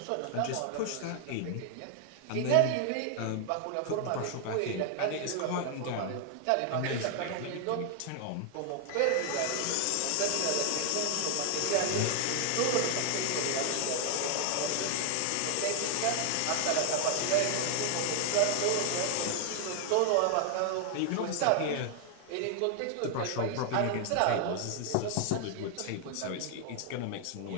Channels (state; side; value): different; both; correlation 0.00